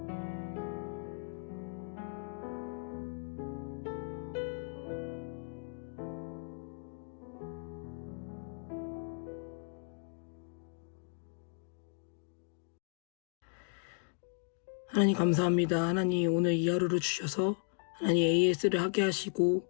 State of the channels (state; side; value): silent; right; 54 dB below the other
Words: 하나님 감사합니다. 하나님 오늘 이 하루를 주셔서 하나님 AS를 하게 하시고